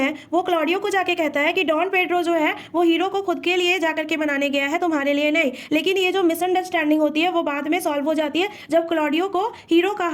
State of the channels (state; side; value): identical; both; correlation 1.00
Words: वो क्लॉडियो को जाके कहता है कि डॉन पेड्रो जो है वो हीरो को खुद के लिए जाकर के मनाने गया है, तुम्हारे लिए नहीं। लेकिन ये जो मिसअंडरस्टैंडिंग होती है वो बाद में सॉल्व हो जाती है जब क्लॉडियो को हीरो का